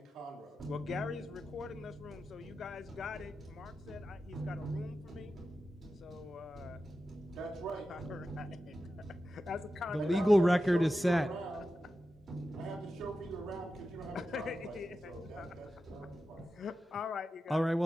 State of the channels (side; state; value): both; normal; correlation 0.92